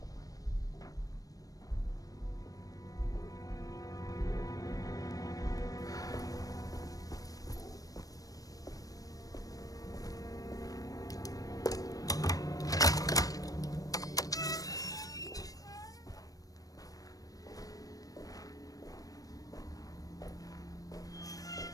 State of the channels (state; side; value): late; right; 0.18 ms